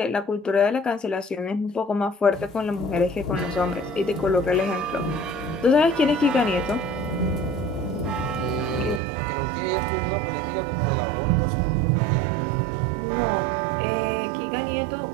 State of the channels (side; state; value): left; drops out; at 9.0 s